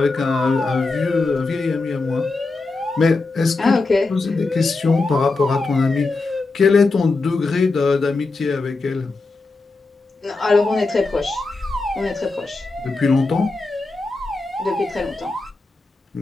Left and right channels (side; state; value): right; quieter; 3.6 dB